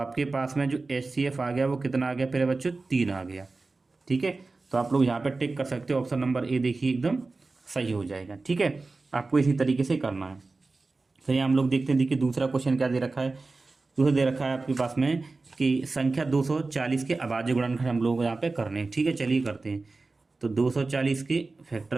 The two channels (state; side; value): quieter; left; 3.6 dB